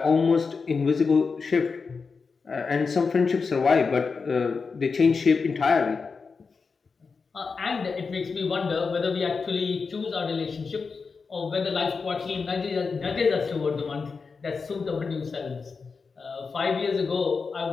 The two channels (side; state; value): right; quieter; 4.9 dB